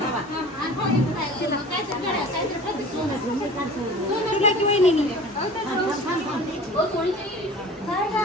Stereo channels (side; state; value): both; normal; correlation 0.41